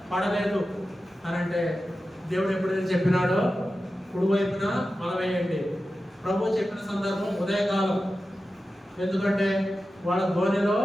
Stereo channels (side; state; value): both; normal; correlation 0.93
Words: పడలేదు అని. అంటే దేవుడు ఎప్పుడైతే చెప్పినాడో కుడివైపున వల వేయండి. ప్రభు చెప్పిన సందర్భం ఉదయకాలం. ఎందుకంటే వాళ్ళ ధోనిలో